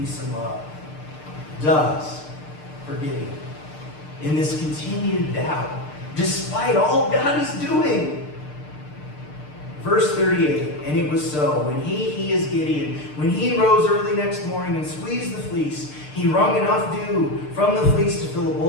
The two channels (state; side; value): late; right; 6.7 ms